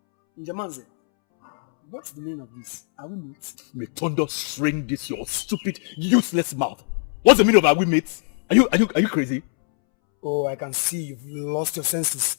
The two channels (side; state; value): right; silent; 64 dB below the other